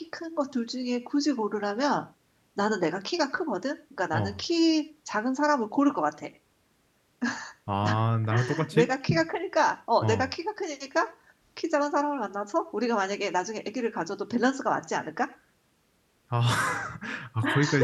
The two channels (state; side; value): identical; both; correlation 1.00